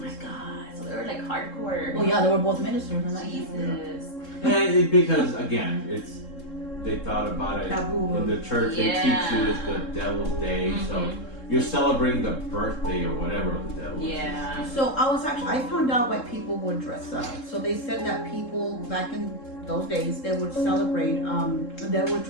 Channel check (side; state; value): right; late; 3.7 ms